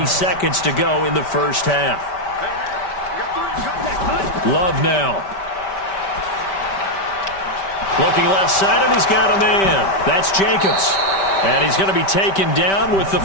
seconds to go in the first half. Love now. Looking left side, and he's got a man. That's Jacobs. And he's going to be taken down with the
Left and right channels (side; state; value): right; late; 5.1 ms